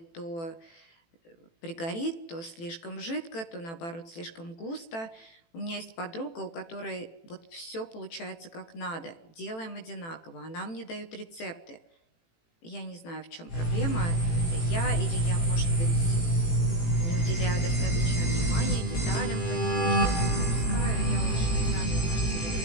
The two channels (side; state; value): right; late; 18 ms